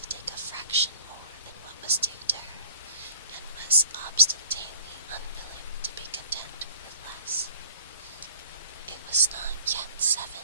take a fraction more than what was due to her, and was obstinately unwilling to be content with less. It was not yet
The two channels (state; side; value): inverted; both; correlation -0.49